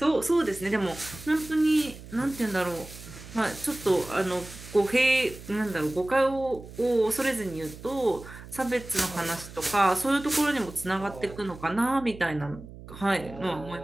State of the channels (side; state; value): right; noise; hum, 16 dB below the sound